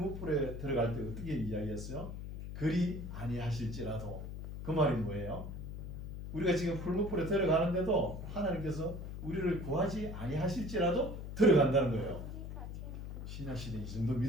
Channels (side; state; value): left; noise; hum, 8 dB below the sound